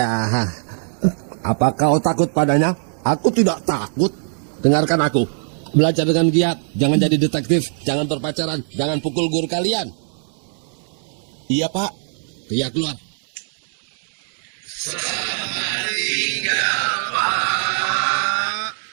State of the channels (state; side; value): silent; left; digital silence